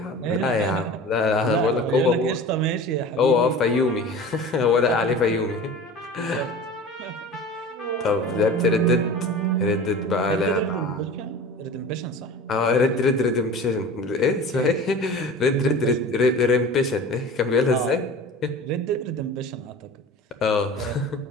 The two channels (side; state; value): both; normal; correlation 0.37